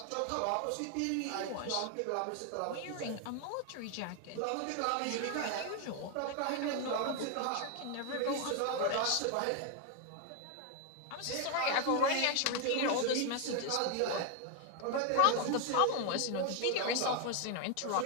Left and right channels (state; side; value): different; both; correlation 0.01